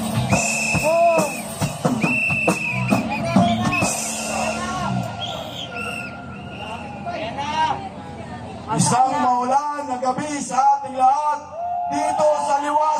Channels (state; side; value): identical; both; correlation 1.00